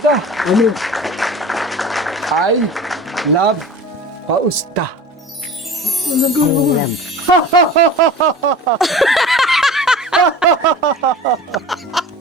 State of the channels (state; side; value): normal; both; correlation 0.37